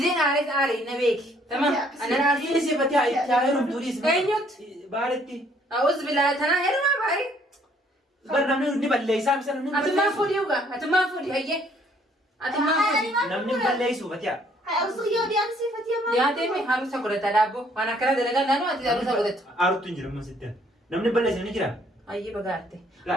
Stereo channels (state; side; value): normal; both; correlation 0.63